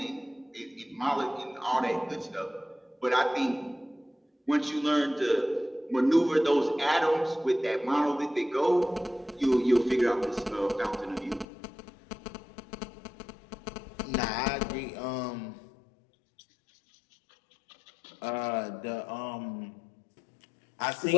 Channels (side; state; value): right; drops out; at 11.5 s